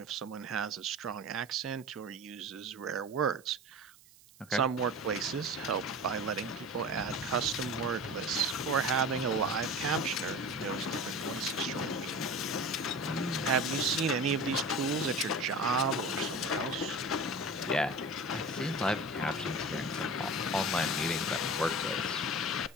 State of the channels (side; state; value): right; noise; hiss, 25 dB below the sound